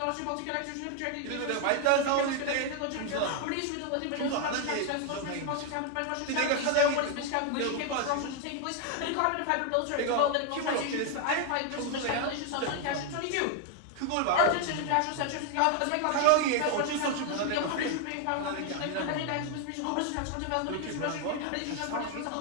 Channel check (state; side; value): different; both; correlation 0.01